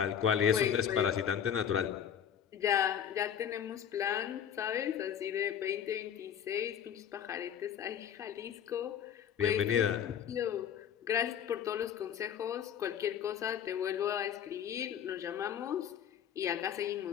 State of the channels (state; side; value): quieter; right; 8.9 dB